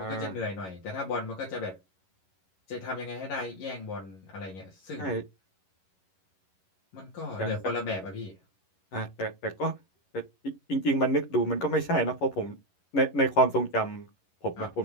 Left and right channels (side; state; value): right; late; 11 ms